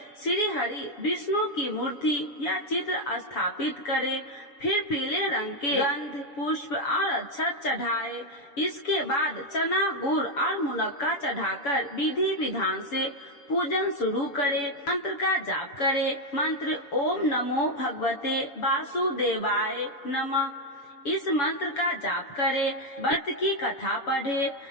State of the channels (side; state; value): right; late; 7.1 ms